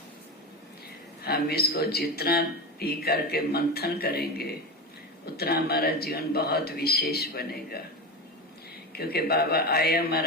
हम इसको जितना पी करके मंथन करेंगे उतना हमारा जीवन बहुत विशेष बनेगा, क्योंकि बाबा आए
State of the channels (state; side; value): normal; both; correlation 0.21